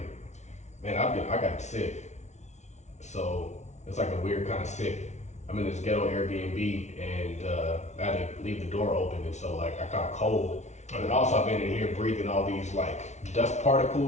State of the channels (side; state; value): right; late; 0.33 ms